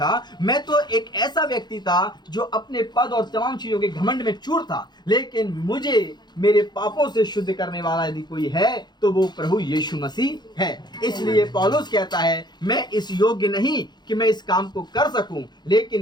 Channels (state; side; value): late; right; 0.21 ms